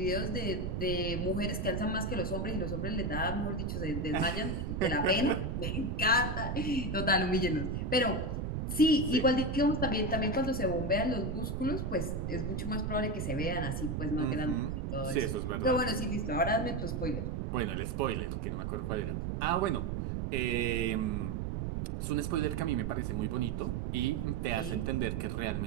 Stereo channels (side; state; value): right; noise; rumble, 2 dB below the sound